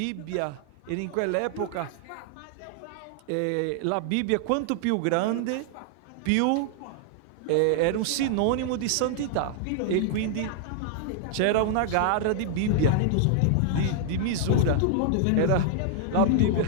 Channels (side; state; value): both; different; correlation 0.00